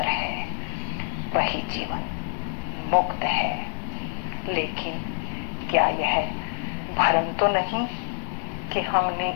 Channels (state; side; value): quieter; right; 37.7 dB